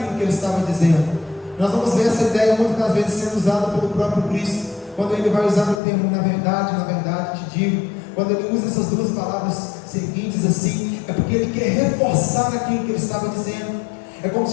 que ele estava dizendo. Nós vamos ver essa ideia muitas das vezes sendo usada pelo próprio Cristo, quando ele vai usar o termo na verdade te digo, quando ele usa essas duas palavras seguintes assim, é porque ele quer reforçar aquilo que ele estava dizendo. É como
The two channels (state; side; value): drops out; right; at 5.8 s